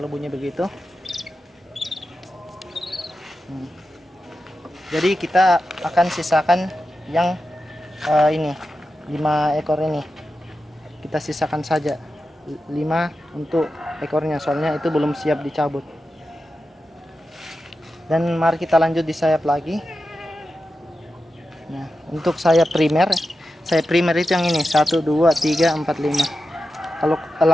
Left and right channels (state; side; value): normal; both; correlation 0.91